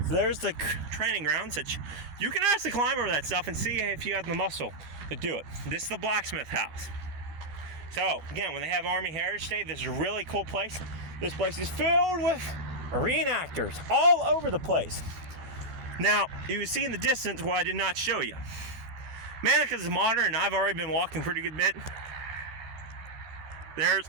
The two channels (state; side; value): late; left; 14 ms